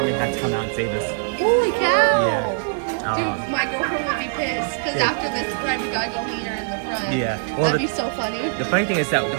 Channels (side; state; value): left; silent; 64 dB below the other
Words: had to come out and save us. Holy cow! Yeah. Dude, my girlfriend would be pissed because after this ride, we gotta go meet her in the front. Yeah. Well, that'd be so funny. The funny thing is that